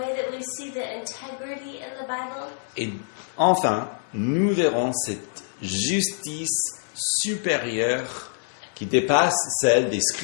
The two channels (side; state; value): right; silent; 61 dB below the other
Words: that we see the integrity in the Bible. et enfin nous verrons cette justice supérieure qui dépasse celle des